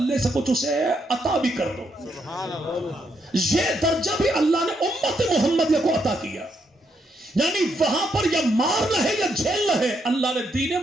سے کچھ اسے عطا بھی کر دو۔ یہ درجہ بھی اللہ نے امت محمدیہ کو عطا کیا، یعنی وہاں پر یا مارنا ہے یا جھیلنا ہے۔ اللہ نے دین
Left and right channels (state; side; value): normal; both; correlation 0.77